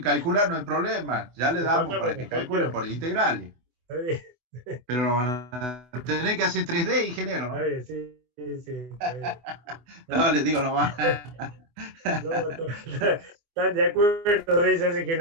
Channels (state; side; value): late; left; 24 ms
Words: calcular no hay problema, ya le Le damos pasamos para la que calculen cuestión. por integrales, Está bien, pero lo van a tener que hacer 3D, ingeniero, está ¿no? bien, sí, sí, sí, está bien. No, les digo nomás. No, están de acuerdo de eso, así que